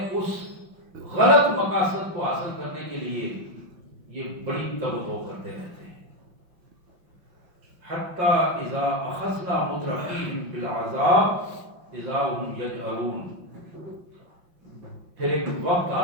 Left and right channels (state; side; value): late; left; 5.6 ms